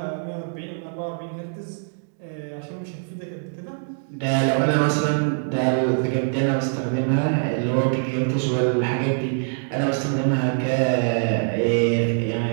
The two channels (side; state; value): left; silent; digital silence